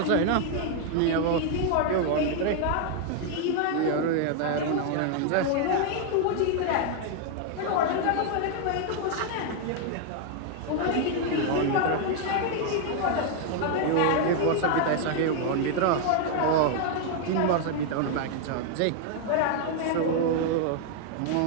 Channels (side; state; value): both; different; correlation 0.00